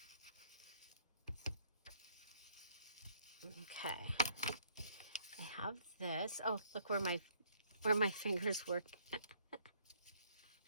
Okay. I have this. Oh, look where my fingers work.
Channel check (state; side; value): inverted; both; correlation -0.65